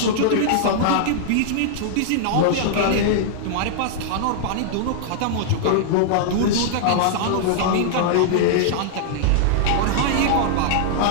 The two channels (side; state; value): both; different; correlation -0.01